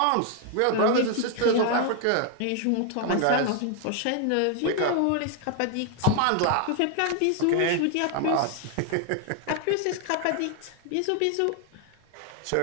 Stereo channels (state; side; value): different; both; correlation 0.00